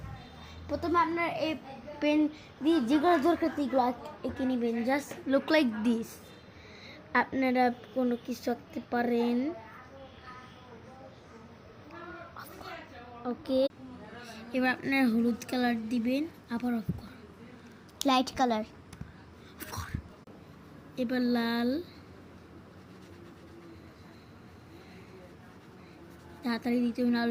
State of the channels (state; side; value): identical; both; correlation 1.00